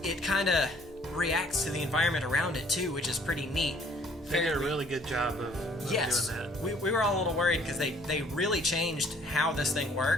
kind of reacts to the environment around it, too, which is pretty neat. They did a really good job of doing that. We were all a little worried because they really changed how this thing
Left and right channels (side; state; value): both; normal; correlation 0.59